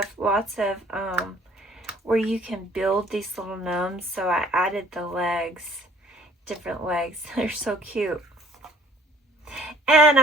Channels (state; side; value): normal; both; correlation 0.56